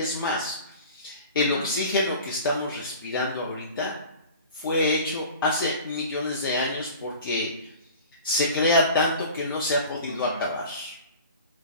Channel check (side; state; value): both; inverted; correlation -0.40